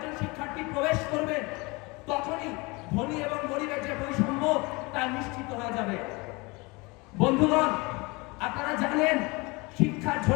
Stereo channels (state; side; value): quieter; right; 25.8 dB